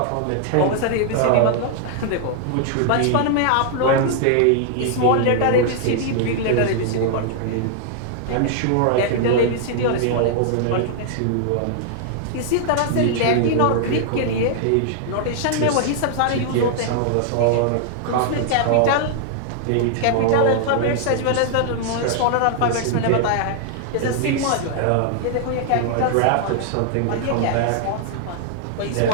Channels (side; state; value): both; different; correlation -0.01